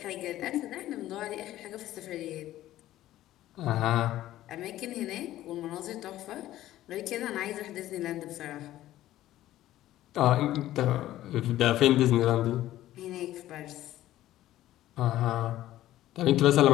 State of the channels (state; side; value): quieter; right; 14.2 dB